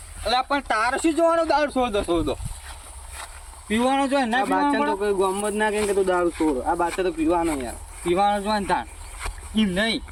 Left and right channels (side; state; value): both; identical; correlation 1.00